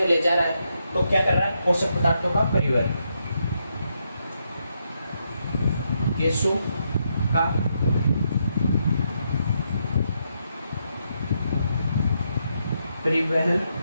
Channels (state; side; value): inverted; both; correlation -0.80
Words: ले जा रहा है। तो क्या कर रहा है? पोषक पदार्थों का परिवहन। गैसों का परिवहन,